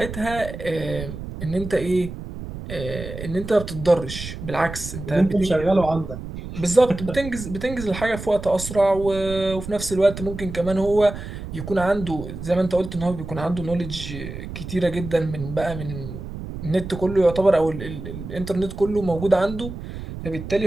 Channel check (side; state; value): right; noise; rumble, 9 dB below the sound